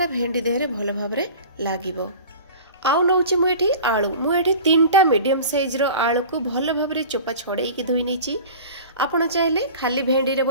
भेंडी देहरे भलो भाबरे लागिबो। आउ नौची मु एठी तीनटा मीडियम साइज रो आलू को भलो भाबरे चोपा छड़ेई की धोई नेची। आपण चाहिले खाली भेंडी रे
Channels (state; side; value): inverted; both; correlation -0.39